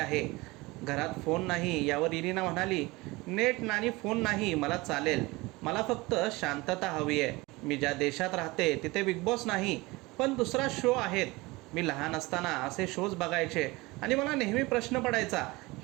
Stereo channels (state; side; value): quieter; left; 22.3 dB